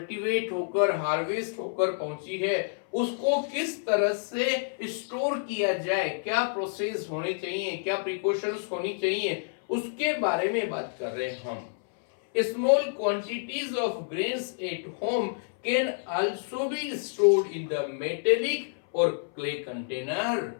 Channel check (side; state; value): right; silent; 59 dB below the other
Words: होकर हार्वेस्ट होकर पहुंची है उसको किस तरह से स्टोर किया जाए, क्या प्रोसेस होने चाहिए, क्या प्रिकॉशंस होनी चाहिए, उसके बारे में बात कर रहे हैं हम। Small quantities of grains at home can also be stored in the metallic or clay container.